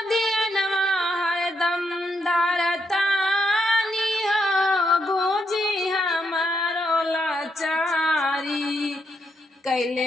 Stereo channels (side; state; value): both; normal; correlation 0.78